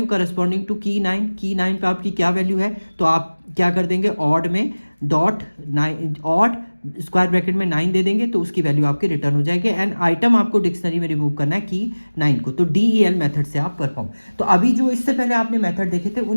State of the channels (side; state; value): both; inverted; correlation -1.00